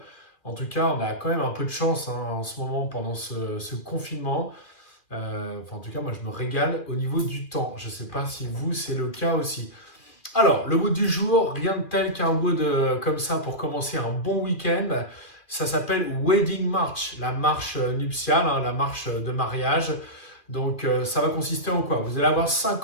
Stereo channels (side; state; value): right; late; 2.4 ms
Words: En tout cas, on a quand même un peu de chance en ce moment pendant ce confinement. En tout cas, moi je me régale au niveau du temps. Je ne sais pas si vous, c'est le cas aussi. Alors, le wood du jour, rien de tel qu'un wood comme ça pour commencer un bon week-end. Ça s'appelle Wedding March, la marche nuptiale, la marche de mariage. Donc, ça va consister en quoi? Vous allez avoir